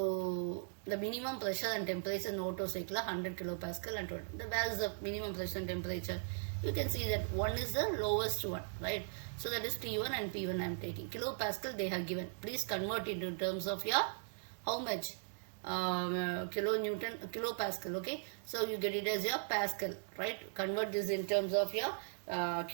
the minimum pressure and temperature in Otto cycle 100 kilopascal, and where is the minimum pressure and temperature? You can see that one is the lowest one, right? So that is T1 and P1 I am taking. Kilopascal they have given. Please convert it in terms of your how much kilopascal. Okay, so you get it as your pascal, right? Convert this in terms of your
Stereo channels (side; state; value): left; silent; digital silence